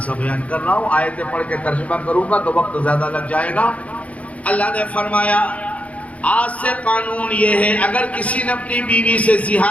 بیان کر رہا ہوں، آیتیں پڑھ کے ترجمہ کروں گا تو وقت زیادہ لگ جائے گا۔ اللہ نے فرمایا آج سے قانون یہ ہے، اگر کسی نے اپنی بیوی سے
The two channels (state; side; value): late; right; 0.066 ms